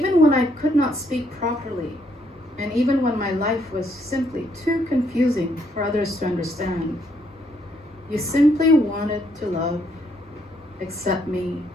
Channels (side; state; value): both; normal; correlation 0.72